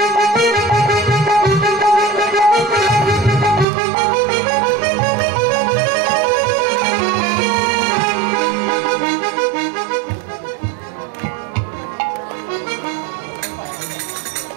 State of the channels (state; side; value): drops out; left; at 3.7 s